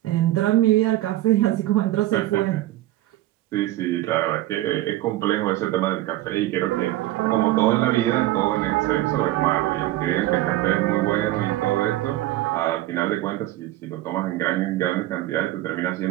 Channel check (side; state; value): left; quieter; 15.7 dB